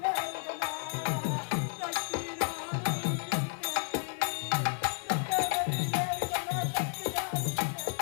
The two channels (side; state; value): right; silent; digital silence